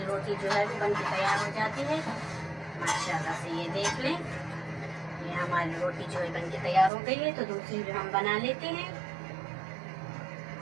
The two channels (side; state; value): left; drops out; at 6.9 s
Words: रोटी जो है वो बनके तैयार हो जाती है। माशाल्लाह से ये देख लें ये हमारी रोटी जो है बनके तैयार हो गई है। तो दूसरी भी हम बना लेते हैं।